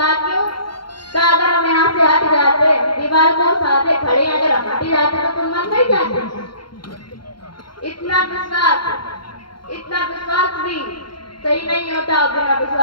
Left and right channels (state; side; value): late; right; 0.73 ms